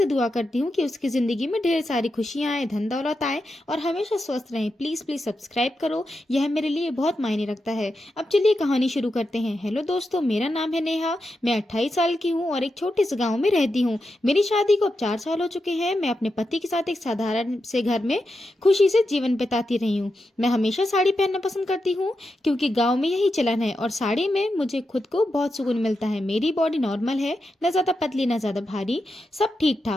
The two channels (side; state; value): both; normal; correlation 0.87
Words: दुआ करती हूँ कि उसकी ज़िंदगी में ढेर सारी खुशियाँ आए, धन दौलत आए और हमेशा स्वस्थ रहें। प्लीज़ प्लीज़ सब्सक्राइब करो, यह मेरे लिए बहुत मायने रखता है। अब चलिए कहानी शुरू करते हैं। हेलो दोस्तों, मेरा नाम है नेहा। मैं 28 साल की हूँ और एक छोटे से गाँव में रहती हूँ। मेरी शादी को अब 4 साल हो चुके हैं। मैं अपने पति के साथ एक साधारण से घर में खुशी से जीवन बिताती रही हूँ। मैं हमेशा साड़ी पहनना पसंद करती हूँ क्योंकि गांव में यही चलन है और साड़ी में मुझे खुद को बहुत सुकून मिलता है। मेरी बॉडी नॉर्मल है, न ज़्यादा पतली न ज़्यादा भारी, सब ठीक